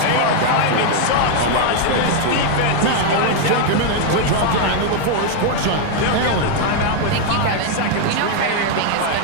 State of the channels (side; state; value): both; different; correlation 0.01